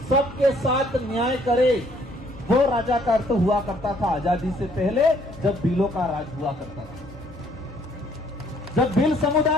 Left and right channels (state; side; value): normal; both; correlation 0.63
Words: सबके साथ न्याय करे। वो राजा का अर्थ हुआ करता था आजादी से पहले, जब भीलों का राज हुआ करता था। जब भील